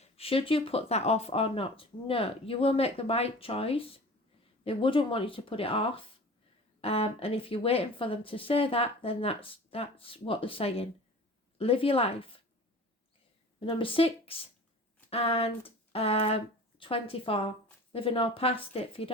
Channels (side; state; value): both; normal; correlation 0.40